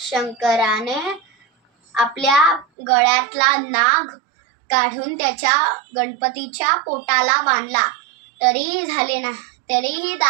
आपल्या गळ्यातला नाग काढून गणपतीच्या पोटाला बांधला, तरीही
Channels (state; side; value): drops out; left; at 2.7 s